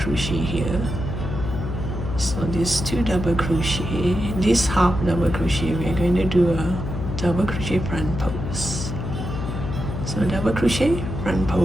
here. So these 2 double crochet, this half double crochet, we are going to do a double crochet front pose. So double crochet, front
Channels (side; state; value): left; noise; hum, 5 dB below the sound